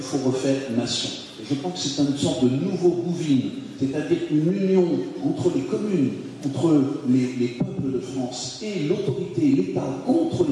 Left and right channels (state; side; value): identical; both; correlation 1.00